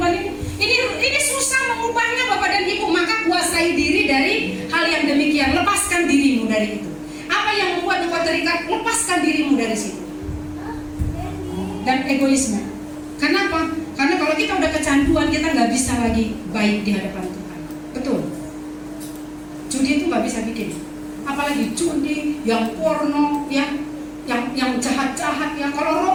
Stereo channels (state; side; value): identical; both; correlation 1.00